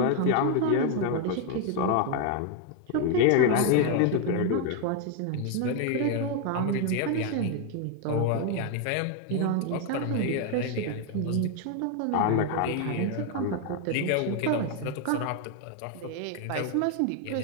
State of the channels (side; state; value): both; different; correlation 0.01